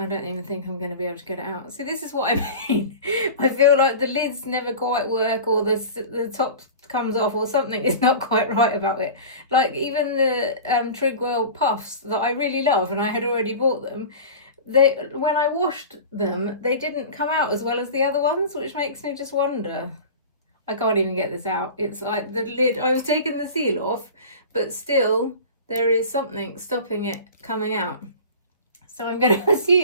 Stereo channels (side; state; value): both; inverted; correlation -0.35